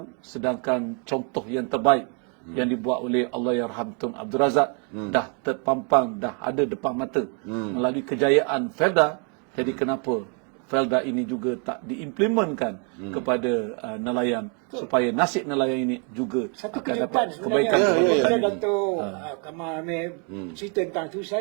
sedangkan contoh yang terbaik yang dibuat oleh Allahyarham Tun Abdul Razak dah terpampang, dah ada depan mata melalui kejayaan Felda. Jadi kenapa Felda ini juga tak diimplementkan kepada nelayan, supaya nasib nelayan ini juga akan dapat kebaikan. Bila Datuk Kamal Amir cerita tentang tu,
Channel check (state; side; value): quieter; left; 38.2 dB